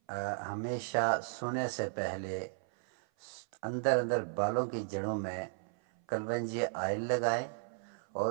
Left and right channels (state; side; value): silent; left; 54 dB below the other